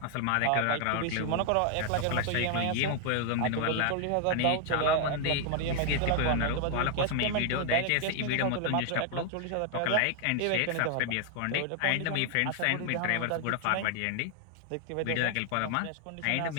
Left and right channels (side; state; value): both; different; correlation 0.00